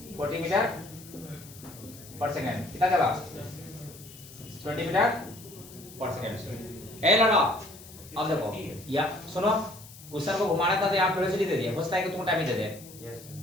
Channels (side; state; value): left; noise; hiss, 18 dB below the sound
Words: 40 मीटर पर सेकंड, कितना चला 20 मीटर पर सेकंड। ए लगा अब देखो या सुनो, क्वेश्चन को घुमाना था तो यहाँ वेलोसिटी दे दिया, होता है कि तुम टाइम ही दे दे,